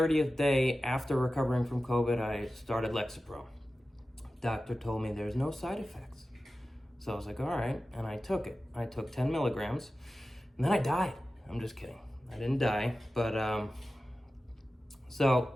day after recovering from COVID, I started Lexapro. Doctor told me there's no side effects. So I was like, all right, and I took it. I took 10 milligrams, and then I died. I'm just kidding. I didn't die, but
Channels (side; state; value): both; normal; correlation 0.94